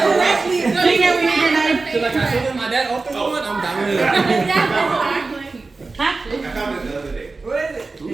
Bring it, we need your knife. So like I told him my dad opened one, I'm down with it. I found it the other day.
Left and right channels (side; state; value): left; quieter; 3.8 dB